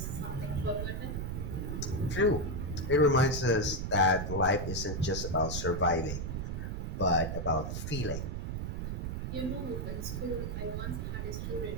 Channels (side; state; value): right; noise; rumble, 3 dB below the sound